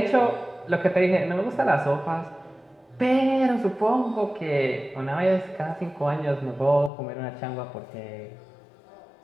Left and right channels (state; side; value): drops out; right; at 6.9 s